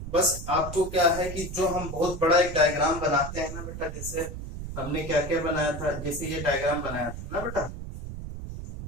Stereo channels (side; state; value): right; noise; rumble, 8 dB below the sound